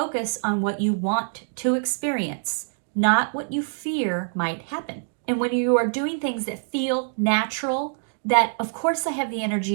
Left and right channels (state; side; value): silent; left; digital silence